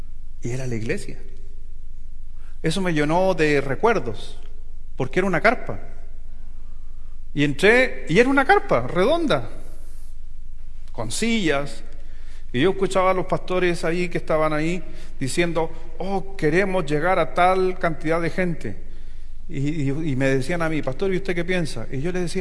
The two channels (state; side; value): identical; both; correlation 1.00